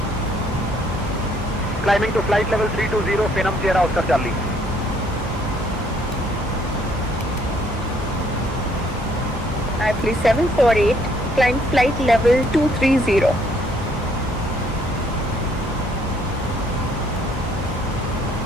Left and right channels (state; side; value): normal; both; correlation 0.65